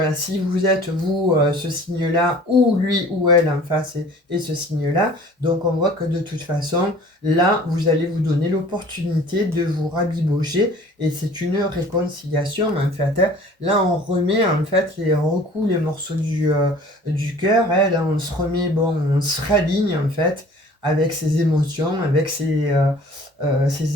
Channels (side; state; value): both; normal; correlation 0.48